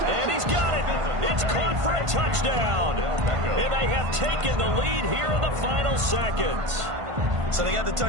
And he's got it. It's caught for a touchdown. And they have taken the lead here in the final seconds. So they got the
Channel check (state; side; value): late; left; 1.5 ms